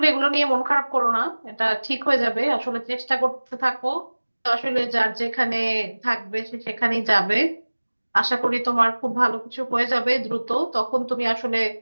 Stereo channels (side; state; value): both; inverted; correlation -1.00